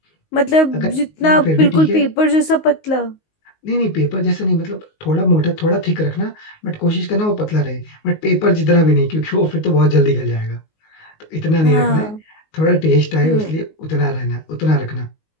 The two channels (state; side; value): late; right; 19 ms